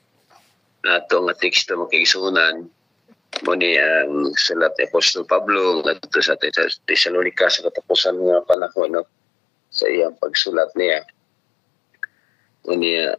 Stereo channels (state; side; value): drops out; right; at 8.6 s